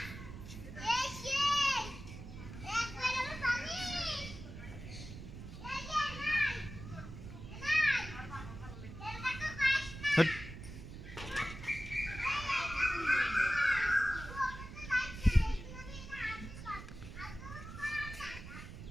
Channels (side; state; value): right; noise; rumble, 11 dB below the sound